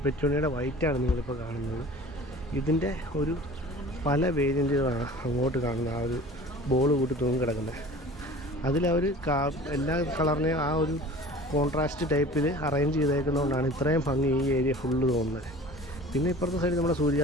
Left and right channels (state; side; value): normal; both; correlation 0.43